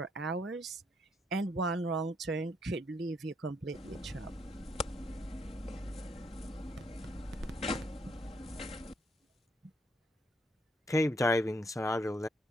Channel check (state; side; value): normal; both; correlation 0.73